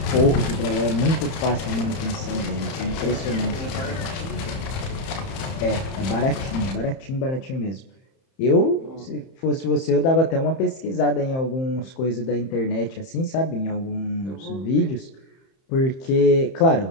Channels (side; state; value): right; late; 31 ms